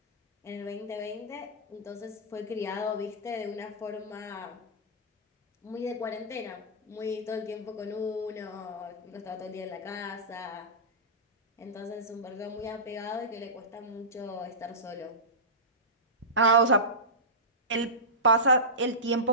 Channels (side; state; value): both; normal; correlation -0.16